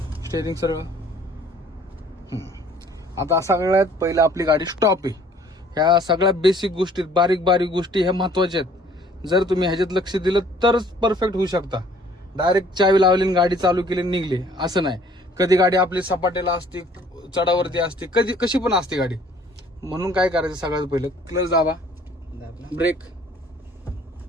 स्टेअरिंग सरळ. आता सगळ्यात पहिलं आपली गाडी स्टॉप आहे. ह्या सगळ्या बेसिक गोष्टी, बारीक बारीक गोष्टी ह्या महत्वाच्या आहेत. जर तुम्ही ह्याच्यात लक्ष दिलं तरच परफेक्ट होऊ शकता. डायरेक्ट चावी लावली आणि गाडी चालू केली निघली असं नाही. कधी गाडी आपली सपाटेला असते, चढावरती असते, कधी कशी पण असते गाडी. म्हणून काय करायचं, सगळ्यात पहिलं क्लच दाबा, ब्रेक.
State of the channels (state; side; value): normal; both; correlation 0.57